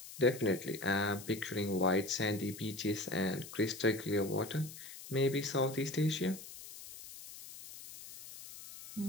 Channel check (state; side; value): noise; left; hiss, 14 dB below the sound